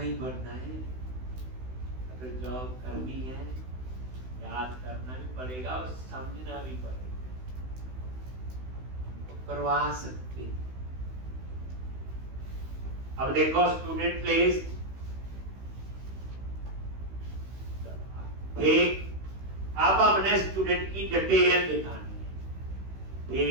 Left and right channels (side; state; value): left; late; 16 ms